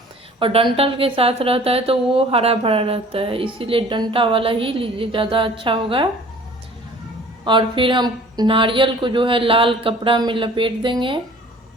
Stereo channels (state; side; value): normal; both; correlation 0.49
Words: और डंठल के साथ रहता है तो वो हरा भरा रहता है, इसीलिए डंठा वाला ही लीजिए, ज़्यादा अच्छा होगा। और फिर हम नारियल को जो है लाल कपड़ा में लपेट देंगे